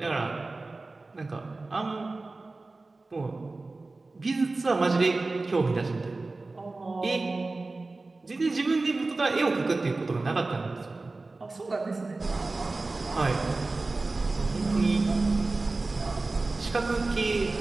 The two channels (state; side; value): quieter; left; 3.4 dB